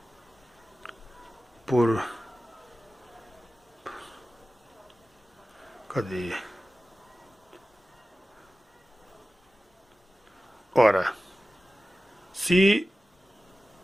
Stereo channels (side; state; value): both; normal; correlation 0.95